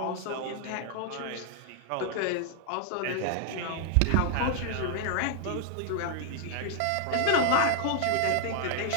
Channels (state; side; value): different; both; correlation 0.00